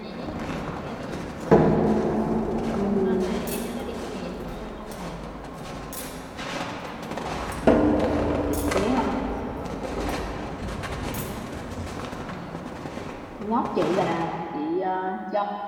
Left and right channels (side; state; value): both; identical; correlation 1.00